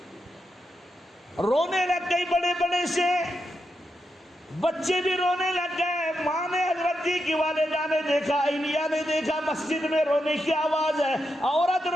رونے لگ گئی بڑے بڑے سے. بچے بھی رونے لگ گئے. ماں نے حضرت جی کی والدہ نے دیکھا, انیا نے دیکھا مسجد میں رونے کی آواز ہے. عورت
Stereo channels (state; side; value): normal; both; correlation 0.85